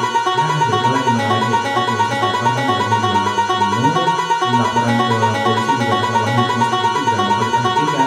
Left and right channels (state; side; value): identical; both; correlation 1.00